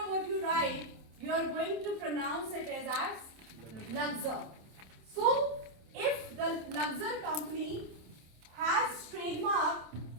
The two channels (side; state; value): left; late; 27 ms